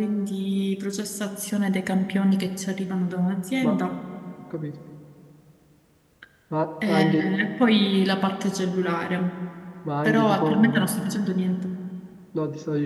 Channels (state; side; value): identical; both; correlation 1.00